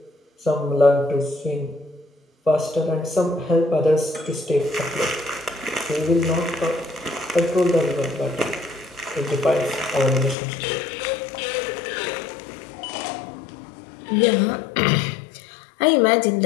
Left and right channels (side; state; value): right; drops out; at 10.4 s